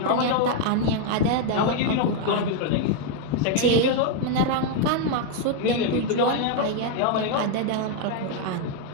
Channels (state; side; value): different; both; correlation 0.00